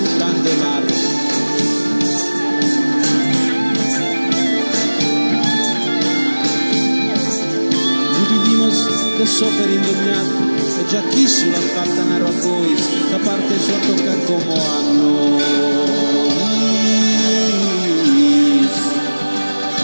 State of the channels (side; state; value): both; inverted; correlation -1.00